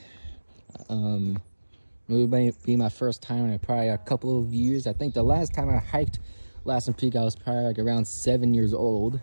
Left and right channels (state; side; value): inverted; both; correlation -1.00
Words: It would be my first time in probably a couple of years. I think the last time I hiked Lassen Peak, I was probably like around 7 years old.